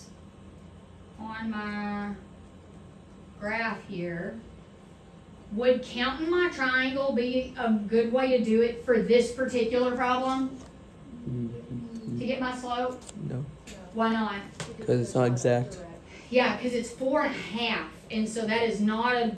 on my graph here, would counting my triangle be a good way to do it for this particular problem? To get my slope? No. Why not? Because it's not exact. Yeah, because it's 4.5, and so that is not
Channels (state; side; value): identical; both; correlation 1.00